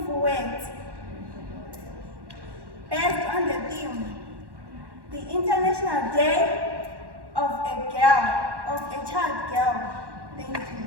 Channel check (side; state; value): left; late; 1.1 ms